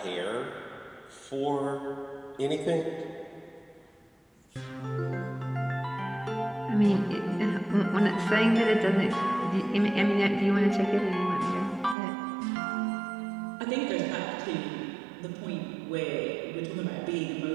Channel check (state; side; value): drops out; left; at 12.0 s